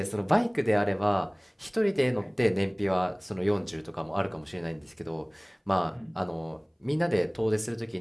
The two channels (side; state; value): both; identical; correlation 1.00